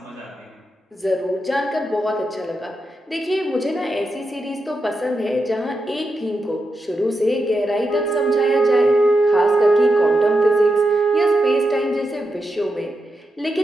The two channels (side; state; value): both; normal; correlation 0.86